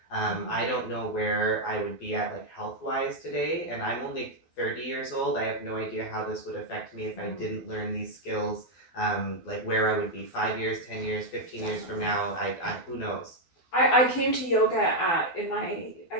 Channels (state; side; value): late; right; 12 ms